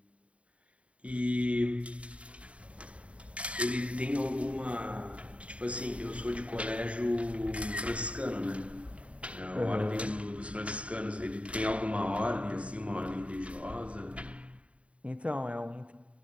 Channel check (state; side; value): late; left; 0.063 ms